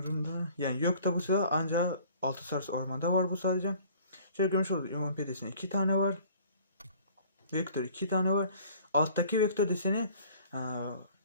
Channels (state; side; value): inverted; both; correlation -0.52